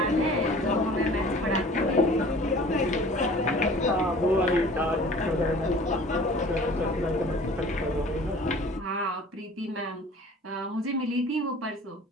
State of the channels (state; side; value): normal; both; correlation 0.47